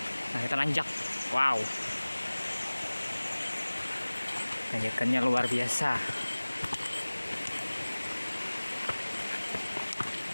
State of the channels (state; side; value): inverted; both; correlation -1.00